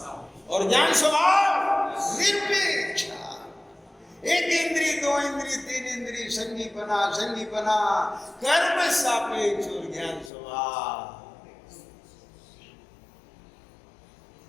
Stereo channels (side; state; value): right; drops out; at 10.3 s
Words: और ज्ञान स्वभाव निरपेक्ष। एक इंद्री दो इंद्री तीन इंद्री संगीपना, संगीपना कर्म सापेक्ष और ज्ञान स्वभाव।